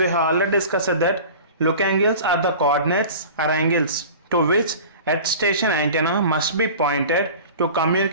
have already discussed that look angles are the coordinates or angles to which earth station antenna must be pointed to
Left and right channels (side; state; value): both; inverted; correlation -0.38